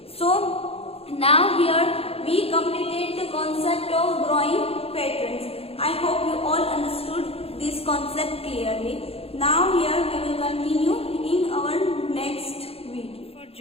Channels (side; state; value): right; late; 0.28 ms